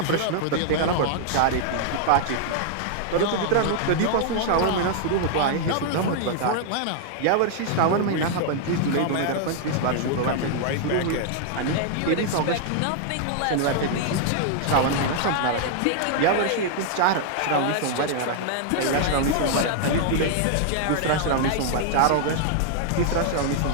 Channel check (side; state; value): both; different; correlation 0.00